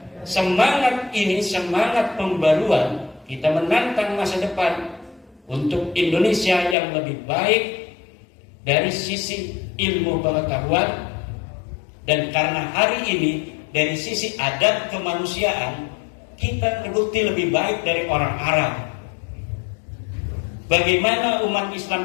Semangat ini, semangat pembaruan, kita menantang masa depan untuk Indonesia yang lebih baik dari sisi ilmu pengetahuan, dan karena hari ini dari sisi adat kemanusiaan kita terbukti lebih baik dari orang Arab. Bagaimana umat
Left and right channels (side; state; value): right; drops out; at 6.8 s